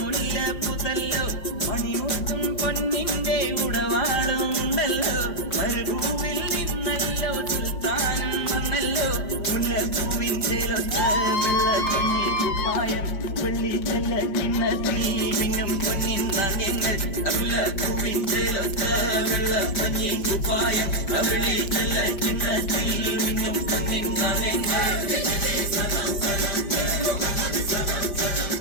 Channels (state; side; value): late; right; 5.6 ms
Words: പുതല്ലോ മണിമുത്തും പൊന്നിന്റെ ഉടവാളും ഉണ്ടല്ലോ മരുഭൂവിൽ നിന്നല്ലോ സുൽത്താനം വന്നല്ലോ മുല്ലപ്പൂവിൻ ചേലൊത്ത വെള്ളക്കഞ്ഞി കുപ്പായം വെള്ളി ചെല്ല കിണ്ണത്തിൽ മിന്നും പൊന്നിൻ നാണ്യങ്ങൾ മുല്ലപ്പൂവിൻ ചേലൊത്ത വെള്ളക്കഞ്ഞി കുപ്പായം വെള്ളി ചെല്ല കിണ്ണത്തിൽ മിന്നും പൊന്നിൻ നാണ്യങ്ങൾ.